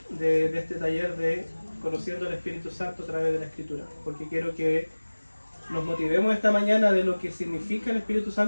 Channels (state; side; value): inverted; both; correlation -1.00